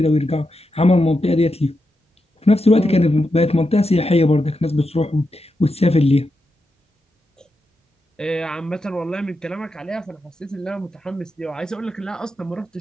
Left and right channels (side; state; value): both; normal; correlation 0.87